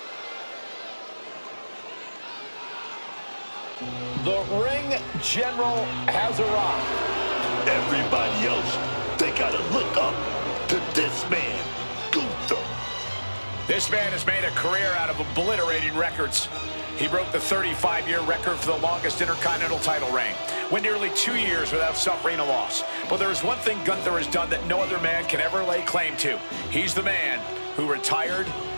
The ring general has arrived. Everybody else, they gotta look up to this man, Gunther. This man has made a career out of obliterating records. He broke the 35-year record for the longest Intercontinental title reign. Went nearly 2 years without suffering a loss. But there is one thing Gunther has done that no other man can ever lay claim to. He's the man who retired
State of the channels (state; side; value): inverted; both; correlation -1.00